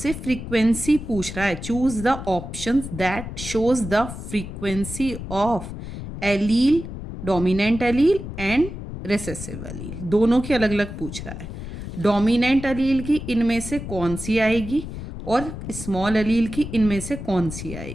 फ्रीक्वेंसी पूछ रहा है। Choose the option that shows the frequency of allele, dominant allele and recessive allele, दोनों की अलग अलग पूछ रहा है। डोमिनेंट एलील की इनमें से कौन सी आएगी और स्मॉल एलील की इनमें से कौन सी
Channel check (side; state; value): left; noise; rumble, 9 dB below the sound